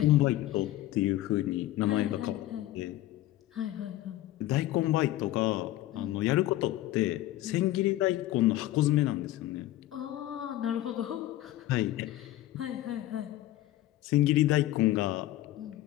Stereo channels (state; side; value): quieter; right; 15.1 dB